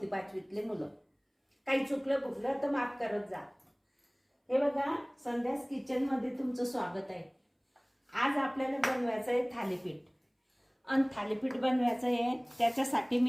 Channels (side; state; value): both; identical; correlation 1.00